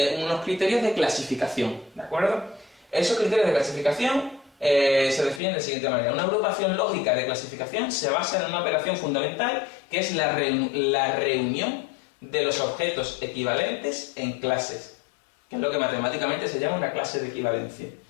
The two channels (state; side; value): drops out; right; at 5.4 s